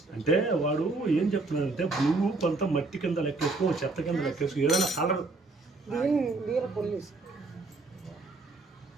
అంటే వాడు ఏం చెప్తున్నాడంటే బ్లూ కొంత మట్టి కింద లెక్కేసుకో, చెత్త కింద లెక్కేసుకో, ఏదైనా కలర్ పోలీస్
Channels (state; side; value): quieter; left; 3.4 dB